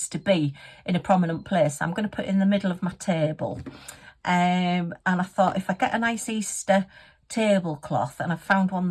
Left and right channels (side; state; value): both; identical; correlation 1.00